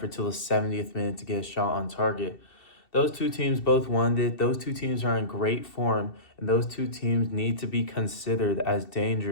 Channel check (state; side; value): late; right; 2.7 ms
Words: till the 70th minute to get a shot on target. Those two teams both wanted it. Those two teams are in great form, and those two teams need to be considered as